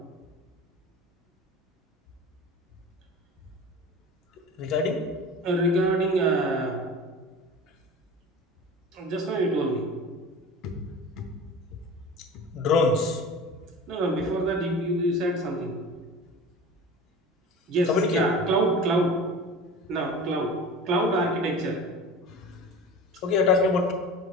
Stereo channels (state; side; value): normal; both; correlation 0.36